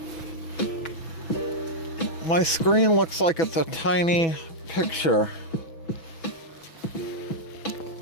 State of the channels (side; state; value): right; late; 6.1 ms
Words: My screen looks like it's a tiny picture.